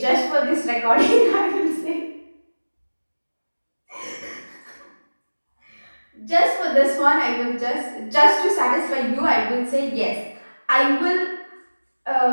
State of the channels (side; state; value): both; inverted; correlation -1.00